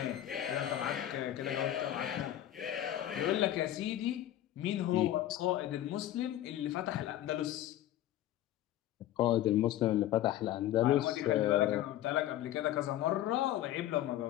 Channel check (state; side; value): quieter; right; 13.0 dB